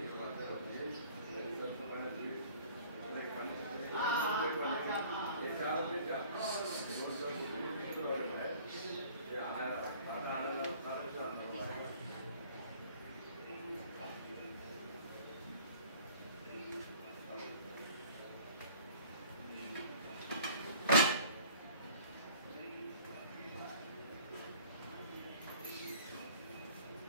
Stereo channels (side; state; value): both; inverted; correlation -0.51